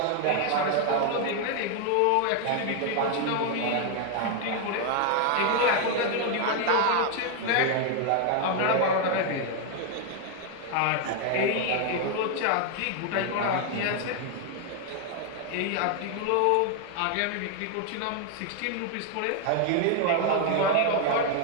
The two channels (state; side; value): different; both; correlation 0.00